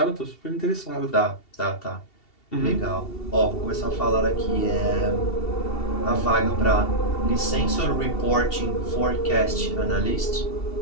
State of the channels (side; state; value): right; late; 2.7 ms